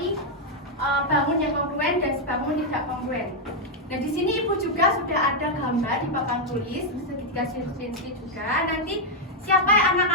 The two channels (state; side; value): normal; both; correlation 0.00